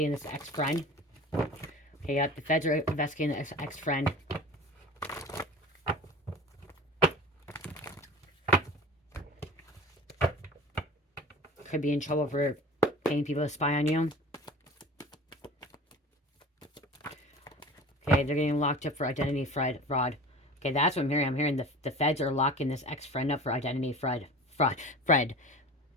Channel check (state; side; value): normal; both; correlation 0.39